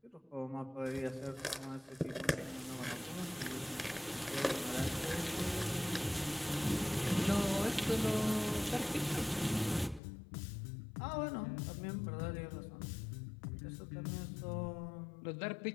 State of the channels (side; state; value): right; drops out; at 10.0 s